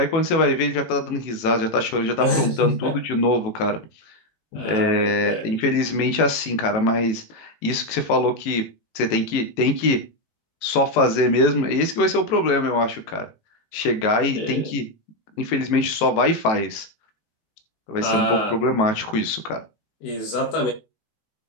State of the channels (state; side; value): late; right; 18 ms